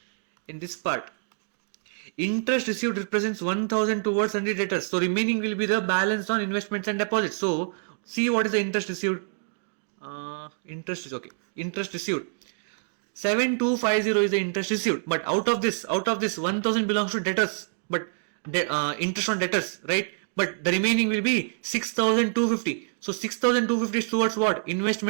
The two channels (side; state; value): left; silent; digital silence